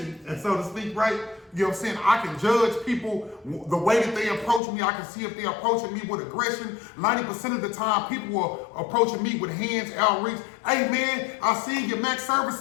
and so to speak, right? You know what I'm saying? I can judge people the way that they approach me. I can see if they're approaching me with aggression. 90% of the time, people are approaching me with hands outreach. Hey man, I see your max service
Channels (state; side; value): drops out; right; at 4.6 s